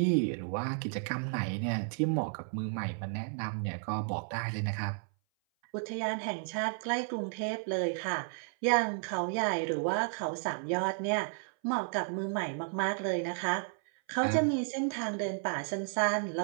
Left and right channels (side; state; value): left; silent; 56 dB below the other